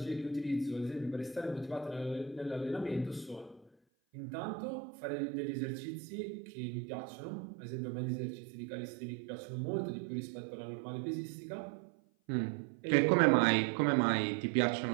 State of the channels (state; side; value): drops out; left; at 3.7 s